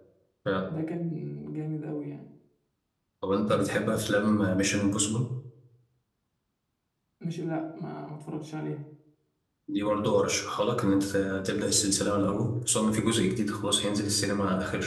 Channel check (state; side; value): identical; both; correlation 1.00